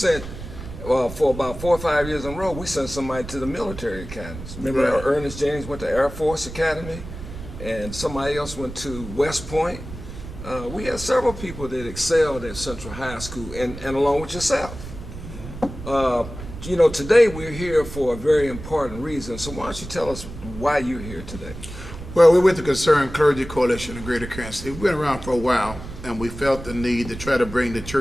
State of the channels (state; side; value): noise; right; rumble, 12 dB below the sound